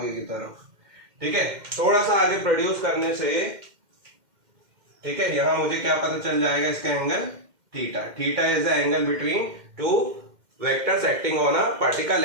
की तरफ, ठीक है। थोड़ा सा आगे प्रोड्यूस करने से, ठीक है, यहां मुझे क्या पता चल जाएगा, इसका angle theta. Theta is the angle between two vectors acting on a particle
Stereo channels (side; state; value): left; late; 2.1 ms